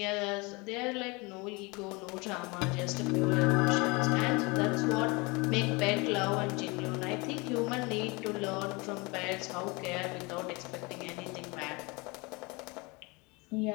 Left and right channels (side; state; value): right; quieter; 26.7 dB